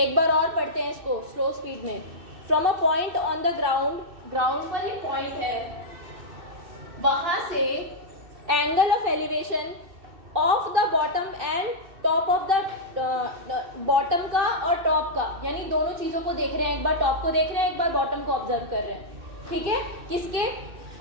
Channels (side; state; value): left; late; 2.6 ms